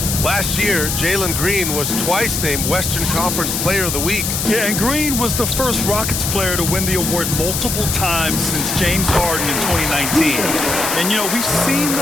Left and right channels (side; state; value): left; noise; hiss, 2 dB below the sound